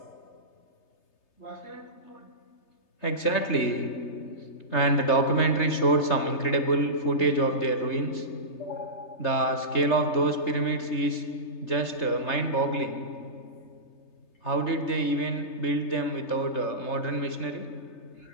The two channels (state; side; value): late; right; 3.3 ms